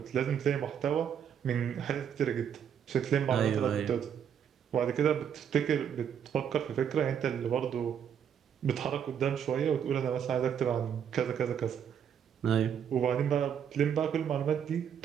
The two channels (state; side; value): quieter; left; 8.3 dB